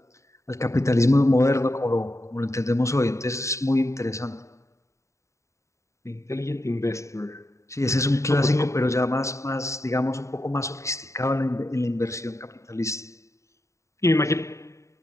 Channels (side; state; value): right; late; 0.14 ms